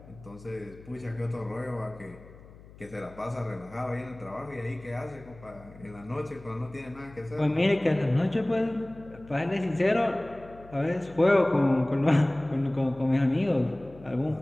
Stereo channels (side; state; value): left; noise; hum, 20 dB below the sound